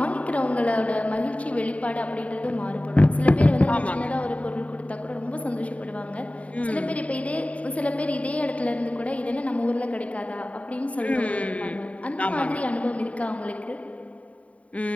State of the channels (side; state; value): right; late; 0.067 ms